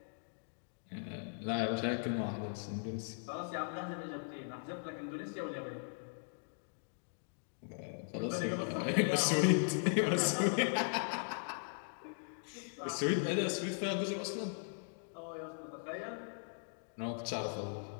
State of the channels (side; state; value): right; silent; digital silence